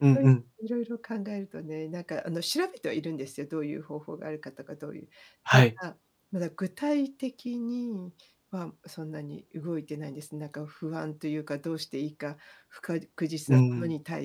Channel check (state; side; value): identical; both; correlation 1.00